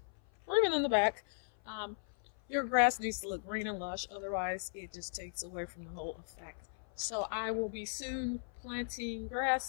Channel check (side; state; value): right; silent; 53 dB below the other